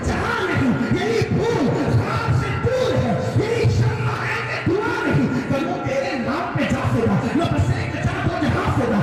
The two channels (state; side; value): identical; both; correlation 1.00